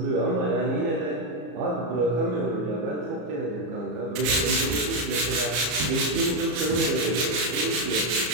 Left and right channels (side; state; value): left; late; 34 ms